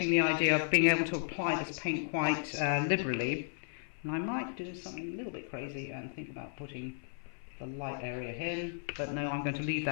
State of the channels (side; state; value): right; silent; 55 dB below the other